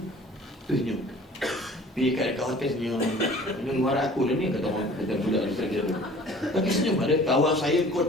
Pergi kat hotel senyum. Ini luar aku lah ni, kata budak dia kira tu. Tapi senyum ada. Kawan saya kau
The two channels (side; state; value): both; normal; correlation 0.48